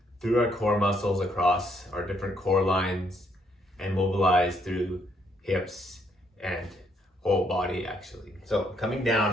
through our core muscles across our different core lines and mobilize through hips and whole body actually. So coming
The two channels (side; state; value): both; normal; correlation 0.71